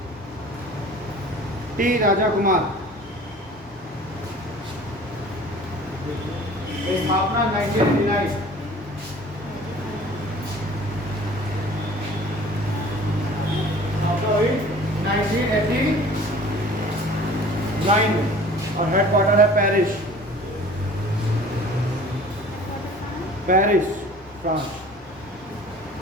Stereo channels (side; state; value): both; normal; correlation 0.46